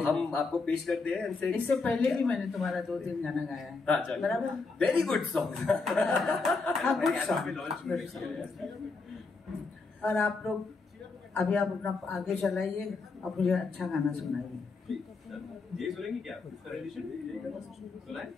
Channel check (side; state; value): right; quieter; 4.1 dB